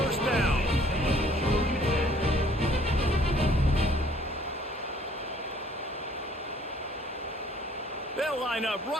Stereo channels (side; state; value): both; normal; correlation 0.59